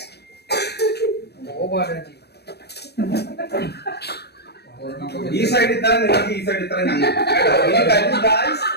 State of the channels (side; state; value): right; late; 0.48 ms